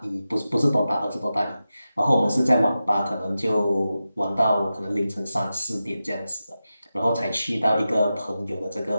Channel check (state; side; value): inverted; both; correlation -0.92